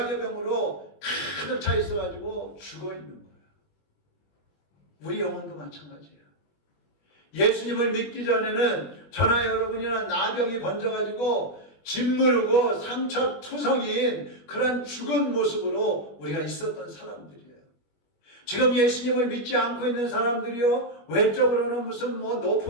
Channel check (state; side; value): late; right; 21 ms